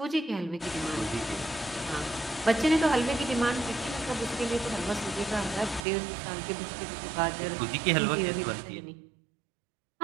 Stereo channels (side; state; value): left; drops out; at 5.8 s